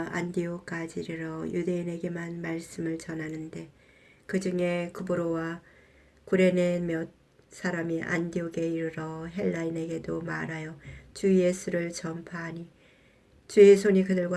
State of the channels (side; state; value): both; identical; correlation 1.00